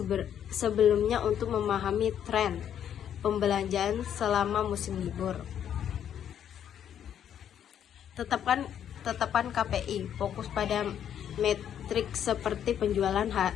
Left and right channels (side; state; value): right; quieter; 9.5 dB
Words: sebelumnya untuk memahami tren pembelanjaan selama musim libur. Tetapkan KPI. Fokus pada metrik seperti penjualan